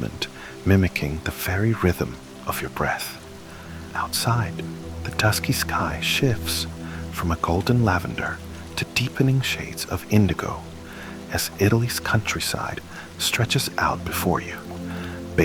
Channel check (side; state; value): both; identical; correlation 1.00